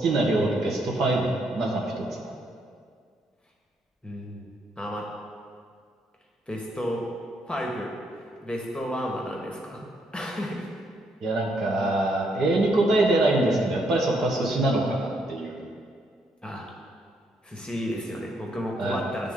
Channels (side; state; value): both; normal; correlation 0.74